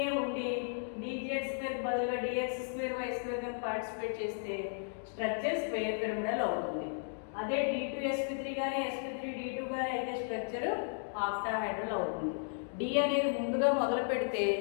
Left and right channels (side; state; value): right; silent; digital silence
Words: ఉండి dz2 బదులుగా dx2y2 కనుక పార్టిసిపేట్ చేస్తే స్ట్రక్చర్ స్క్వేర్ పిరమిడల్ అవుతుంది. అదే d2sp3 కానీ sp3d2 కానీ అయితే స్ట్రక్చర్ ఆక్టాహెడ్రల్ అవుతుంది. డి అనేది ముందుగా మొదలు పెడితే